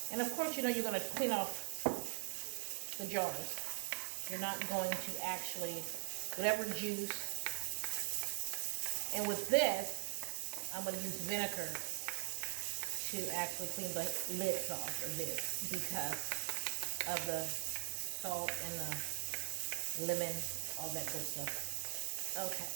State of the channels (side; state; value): left; silent; 50 dB below the other